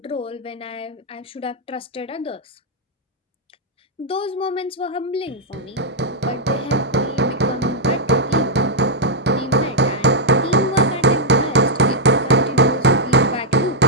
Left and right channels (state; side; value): normal; both; correlation -0.05